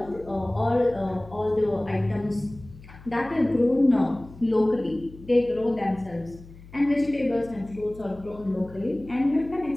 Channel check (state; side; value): noise; left; hum, 19 dB below the sound